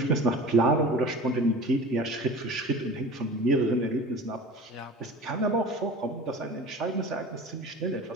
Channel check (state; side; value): normal; both; correlation 0.38